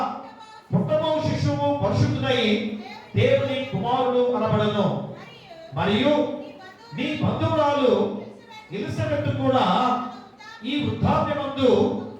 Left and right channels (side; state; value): both; identical; correlation 1.00